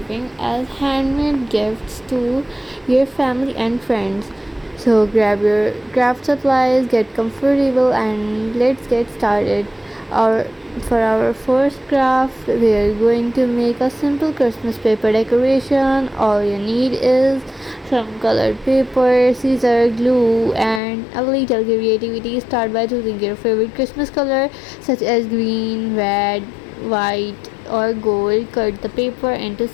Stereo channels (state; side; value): drops out; right; at 20.8 s